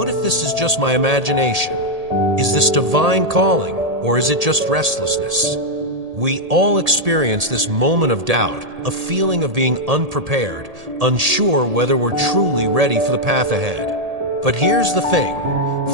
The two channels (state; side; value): late; left; 1.8 ms